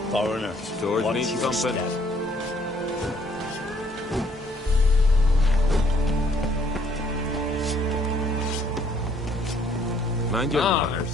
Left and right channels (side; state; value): both; normal; correlation 0.64